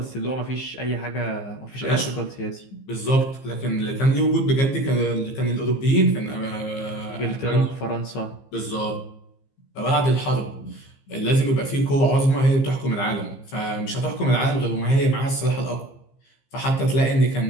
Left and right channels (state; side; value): late; right; 15 ms